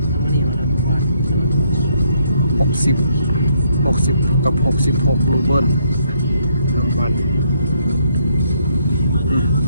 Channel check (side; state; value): both; inverted; correlation -0.72